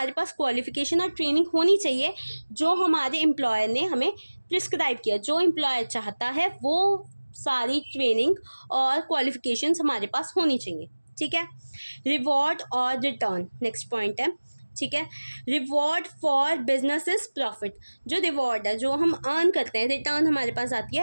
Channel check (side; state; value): both; inverted; correlation -1.00